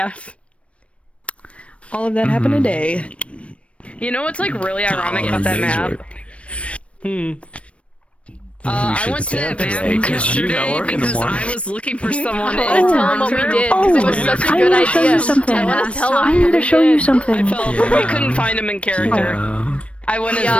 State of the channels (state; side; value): late; right; 0.062 ms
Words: All of that happened today. You know what's like really ironic about that map? I went to that map yesterday because I was looking for someone. I wanna tell him what we did because it was such a good idea. I want to tell him. I need to show you something. We couldn't find him in character. I went as